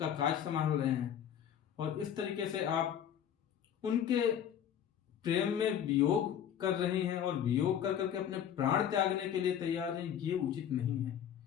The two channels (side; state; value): right; quieter; 9.3 dB